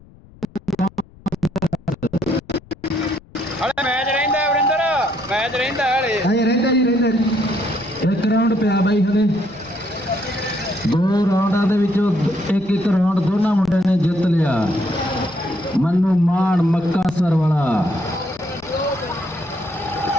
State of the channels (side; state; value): left; noise; rumble, 25 dB below the sound